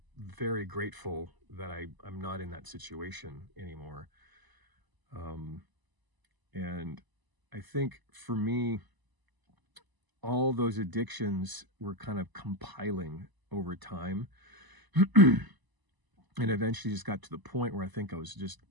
very grateful that I'm not in that situation anymore. Um, and I think for me, all those addictions were kind of compiling over time. And eventually just got to the point where I think I was just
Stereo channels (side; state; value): left; late; 1.0 ms